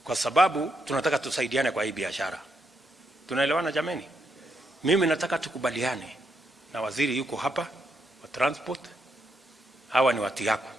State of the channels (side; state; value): both; normal; correlation 0.79